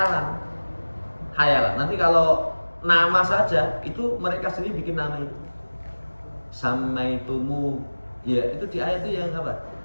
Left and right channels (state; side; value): inverted; both; correlation -1.00